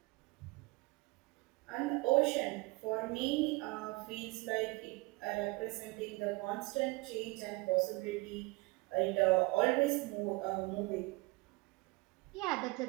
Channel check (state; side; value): quieter; left; 24.0 dB